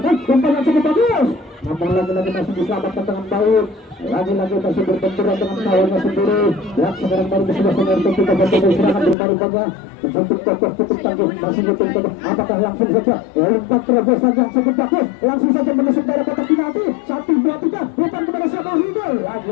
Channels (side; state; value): right; drops out; at 9.2 s